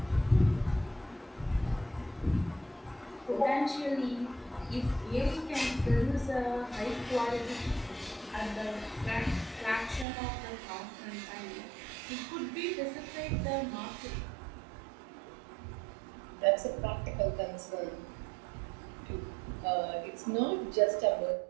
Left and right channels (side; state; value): left; drops out; at 10.1 s